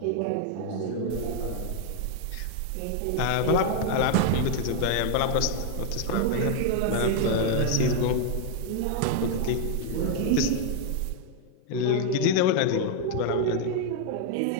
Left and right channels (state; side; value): different; both; correlation 0.00